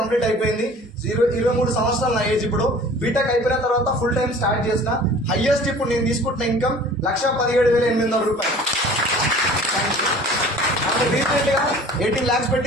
అయిపోయింది, 23 సంవత్సరాలు నా ఏజ్. ఇప్పుడు బీటెక్ అయిపోయిన తర్వాత ఫుల్ టైం స్టార్ట్ చేసిన. హైయెస్ట్ ఇప్పుడు నేను తీసుకుంటున్న ఇన్కమ్ 1,17,800 రూపాయలు. రీసెంట్ గా 18 lakhs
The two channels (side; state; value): both; normal; correlation 0.46